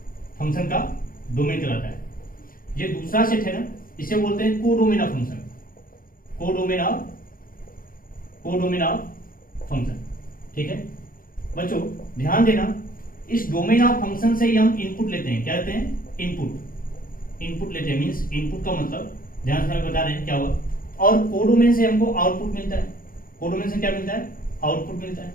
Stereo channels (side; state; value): right; late; 0.41 ms